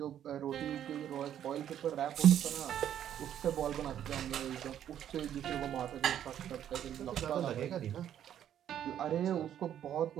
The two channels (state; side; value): quieter; left; 10.4 dB